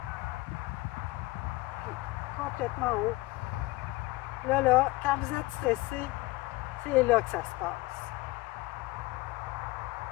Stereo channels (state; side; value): quieter; right; 21.0 dB